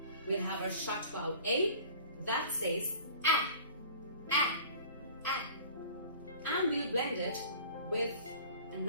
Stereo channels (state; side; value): inverted; both; correlation -0.45